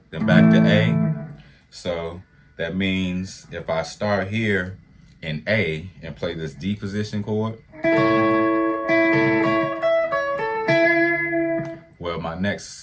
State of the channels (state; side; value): identical; both; correlation 1.00